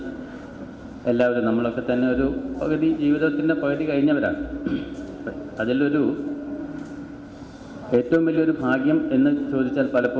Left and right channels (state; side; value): identical; both; correlation 1.00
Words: എല്ലാവരും നമ്മളൊക്കെ തന്നെ ഒരു പകുതി ജീവിതത്തിൻ്റെ പകുതി കഴിഞ്ഞവരാണ്. അതിലൊരു ഏറ്റവും വലിയൊരു ഭാഗ്യം എന്ന് ചോദിച്ചാൽ